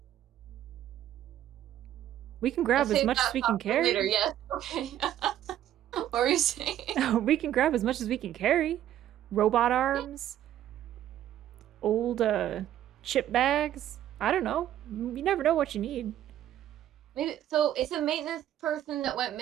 We can grab I'll as save much that as we thought can for carry. Later, yes. Okay. What were you saying? We can grab as much as we can carry. Robot arms, old chip bags. I don't know. You never know what you need. Maybe so. It's a maintenance person that went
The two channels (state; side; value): quieter; left; 11.8 dB